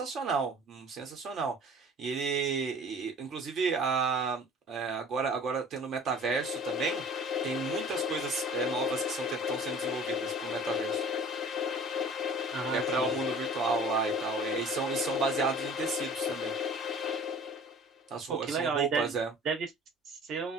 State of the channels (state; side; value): normal; both; correlation 0.46